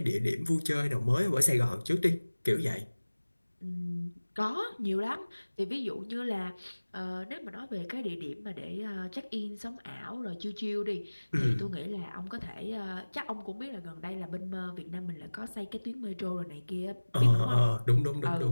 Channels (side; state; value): both; inverted; correlation -1.00